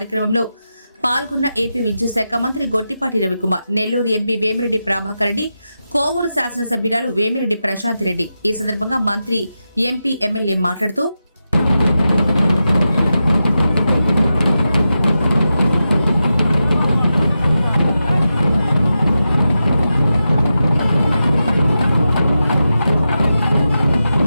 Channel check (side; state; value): both; inverted; correlation -0.90